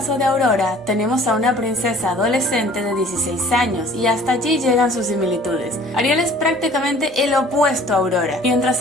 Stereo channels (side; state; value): both; normal; correlation 0.51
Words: de Aurora, tenemos a una princesa adolescente de 16 años y hasta allí llegan sus similitudes. Ariel es prácticamente el opuesto a Aurora. Mientras